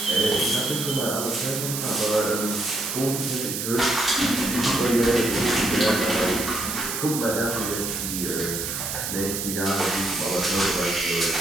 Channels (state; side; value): noise; right; hiss, 3 dB below the sound